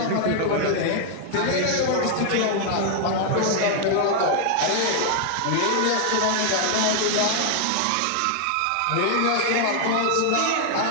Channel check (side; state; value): both; different; correlation 0.00